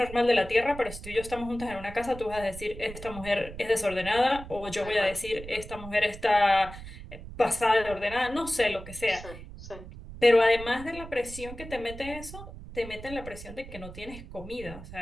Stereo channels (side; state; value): right; noise; rumble, 13 dB below the sound